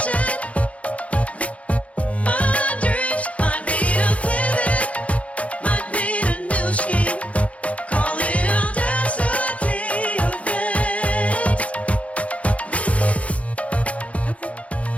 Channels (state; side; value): late; right; 0.065 ms